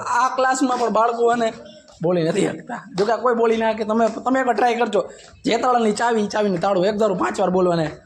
આ ક્લાસમાં પણ બાળકો અને બોલી નથી શકતા. જો કે કોઈ બોલી ના કે તમે એકવાર ટ્રાય કરજો. જે તાળાની ચાવી ચાવીનું તાળું એક ધારું 5 વાર બોલવાને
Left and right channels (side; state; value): both; identical; correlation 1.00